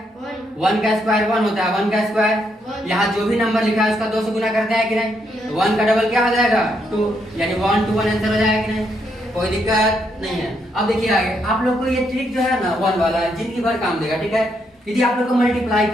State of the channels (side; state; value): both; normal; correlation 0.77